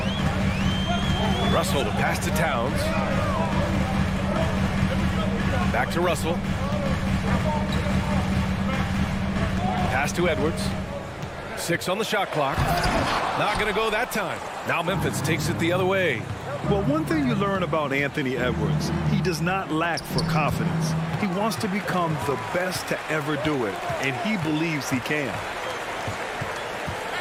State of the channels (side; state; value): both; identical; correlation 1.00